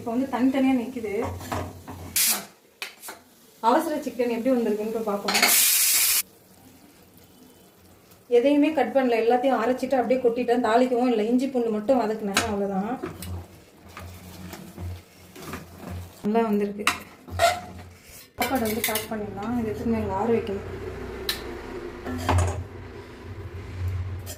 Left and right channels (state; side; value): identical; both; correlation 1.00